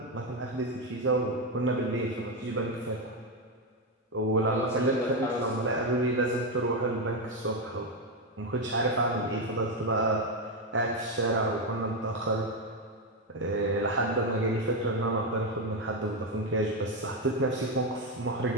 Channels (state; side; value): normal; both; correlation 0.07